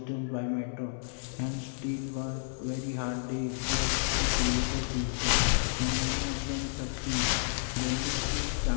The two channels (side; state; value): right; silent; 57 dB below the other